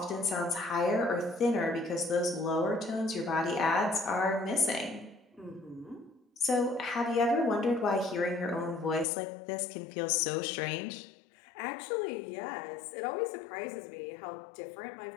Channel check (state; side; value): drops out; right; at 9.1 s